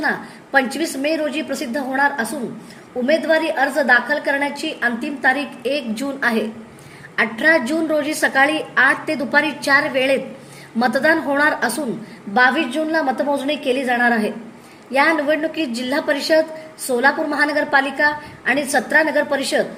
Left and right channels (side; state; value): both; identical; correlation 1.00